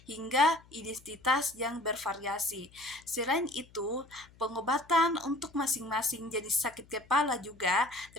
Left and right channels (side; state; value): left; noise; hum, 26 dB below the sound